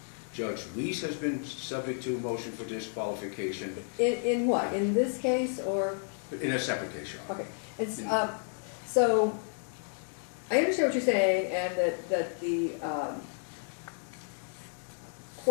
Judge Weiss has been subject to a motion for disqualification. In what? In this case, or? In a separate case, Your Honor. Okay. It's, so I understand what you're saying, and that the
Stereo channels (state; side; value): silent; right; 57 dB below the other